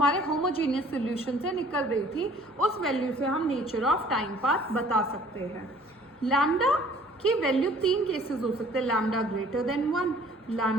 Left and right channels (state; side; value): normal; both; correlation 0.54